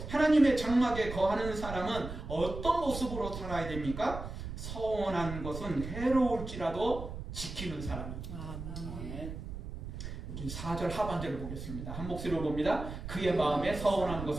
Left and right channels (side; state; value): right; noise; rumble, 8 dB below the sound